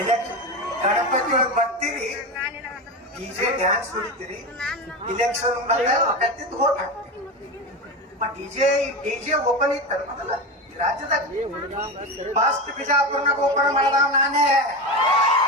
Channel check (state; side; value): normal; both; correlation 0.20